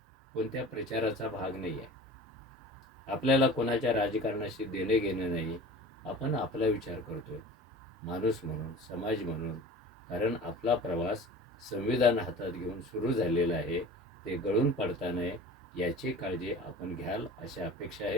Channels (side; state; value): both; normal; correlation 0.39